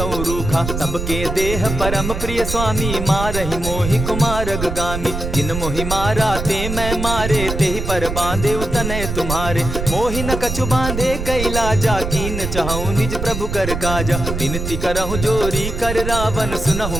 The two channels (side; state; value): right; noise; rumble, 4 dB below the sound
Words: रूखा। सबके देह परम प्रिय स्वामी, मारहि मोहि कुमारग गामी। जिन मोहि मारा ते मैं मारे, तेहि पर बांधे उतने तुम्हारे। मोहि न कछु बांधे कैलाजा, कीन चाहूं निज प्रभु कर काजा। विनती करहु जोरी कर रावण,